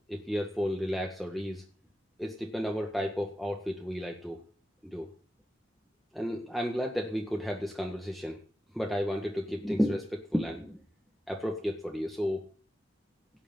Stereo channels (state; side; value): normal; both; correlation 0.91